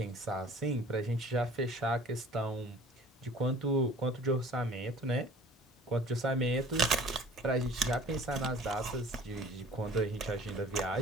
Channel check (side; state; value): both; normal; correlation 0.48